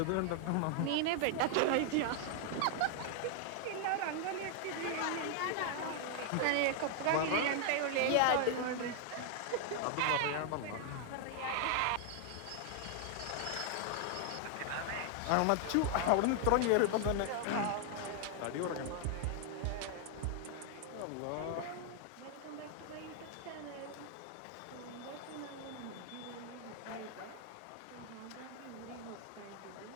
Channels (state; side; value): different; both; correlation 0.00